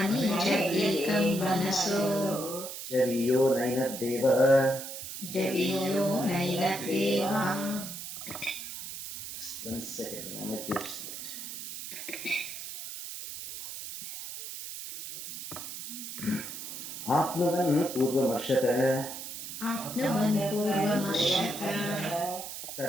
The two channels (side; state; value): right; noise; hiss, 9 dB below the sound